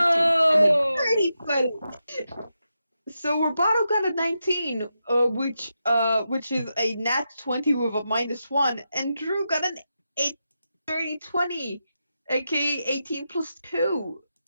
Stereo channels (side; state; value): both; inverted; correlation -0.87